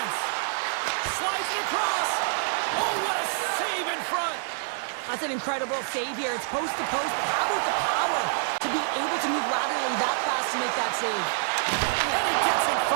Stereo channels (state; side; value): silent; left; digital silence